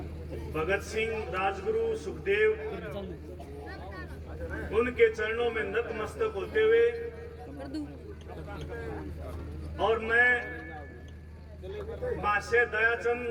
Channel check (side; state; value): both; identical; correlation 1.00